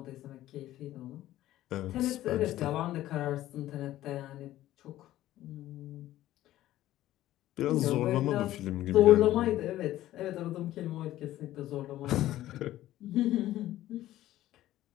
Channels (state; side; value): quieter; right; 14.4 dB